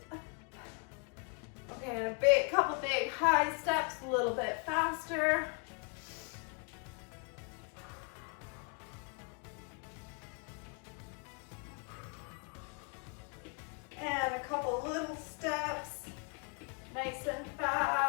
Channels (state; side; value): quieter; right; 36.7 dB